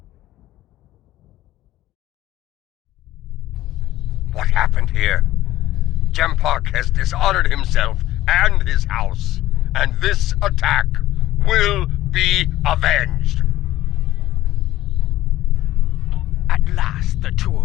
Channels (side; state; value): right; quieter; 15.1 dB